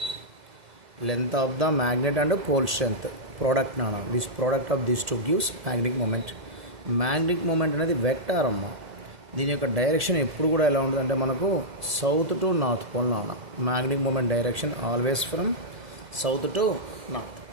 Length of the magnet and pole strength product this product of this two gives magnetic moment. Magnetic moment అనేది vector అమ్మ. దీని యొక్క direction ఎప్పుడు కూడా ఎలా ఉంటుందంటే మనకు south to north pole magnetic moment direction always from south to north.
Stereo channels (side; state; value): left; late; 2.0 ms